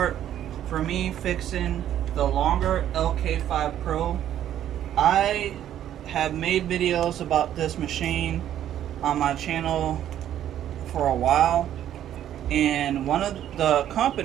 for me fixing the longer lk5 Pro. I have made videos about this machine on my channel for a while, and one of the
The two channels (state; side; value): quieter; left; 11.1 dB